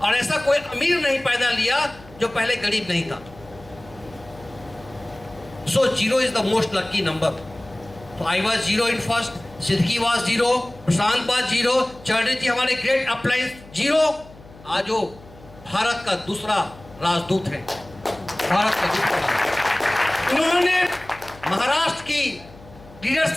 ऐसा कोई अमीर नहीं पैदा लिया जो पहले गरीब नहीं था। So 0 is the most lucky number. So I was 0 in first, Siddiqui was 0, Prashant was 0, Chaudhary जी हमारे ग्रेट अपलाइंस 0। आज वो भारत का दूसरा राजदूत है, भारत का दूसरा। उन्होंने महाराष्ट्र की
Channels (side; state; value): left; noise; hum, 21 dB below the sound